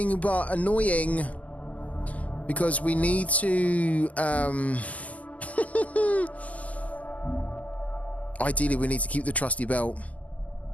but annoying. Because we need to... Ideally, we need to keep the trusty belt.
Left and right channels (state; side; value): late; right; 0.074 ms